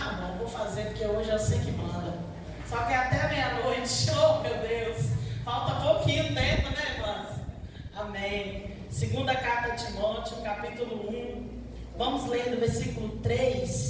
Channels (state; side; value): identical; both; correlation 1.00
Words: bom, vou fazer, porque hoje eu sei que manda. Só que até meia-noite, oh meu Deus, falta pouquinho tempo, né, irmãs? Amém. Segunda carta de Timóteo, capítulo 1. Vamos ler do versículo